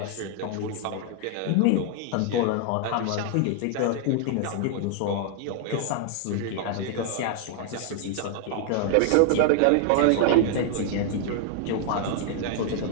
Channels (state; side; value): different; both; correlation -0.01